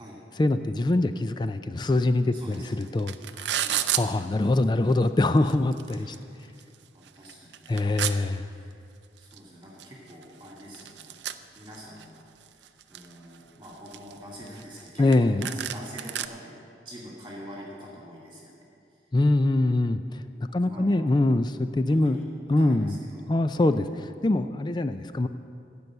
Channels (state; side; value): normal; both; correlation 0.84